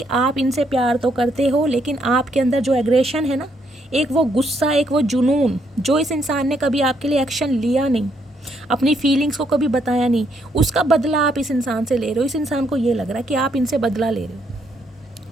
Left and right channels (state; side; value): normal; both; correlation 0.73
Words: आप इनसे प्यार तो करते हो, लेकिन आपके अंदर जो एग्रेशन है ना, एक वो गुस्सा, एक वो जुनून, जो इस इंसान ने कभी आपके लिए एक्शन लिया नहीं, अपनी फीलिंग्स को कभी बताया नहीं, उसका बदला आप इस इंसान से ले रहे हो। इस इंसान को ये लग रहा है कि आप इनसे बदला ले रहे